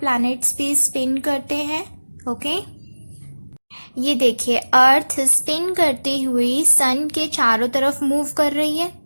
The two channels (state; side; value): inverted; both; correlation -1.00